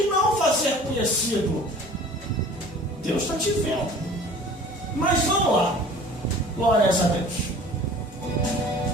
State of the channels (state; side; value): normal; both; correlation 0.46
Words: e não fazer conhecido. Deus está te vendo. Mas vamos lá. Glórias a Deus.